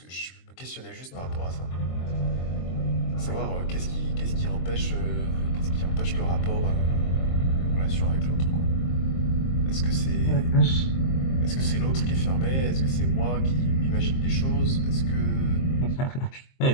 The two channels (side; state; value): right; late; 23 ms